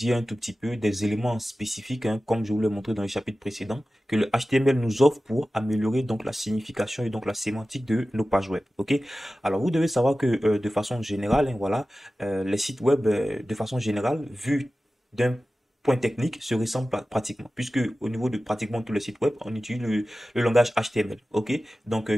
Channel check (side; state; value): both; normal; correlation 0.95